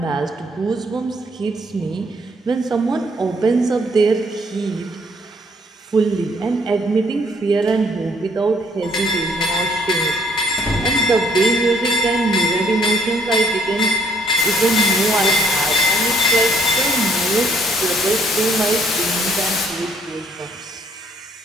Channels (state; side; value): normal; both; correlation 0.65